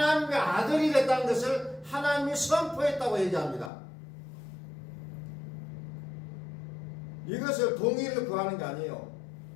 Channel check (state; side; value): drops out; right; at 3.7 s